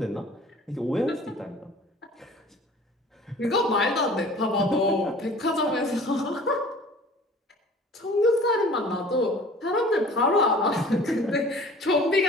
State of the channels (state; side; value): normal; both; correlation 0.46